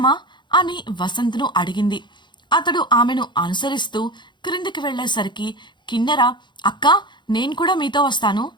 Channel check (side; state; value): right; late; 0.22 ms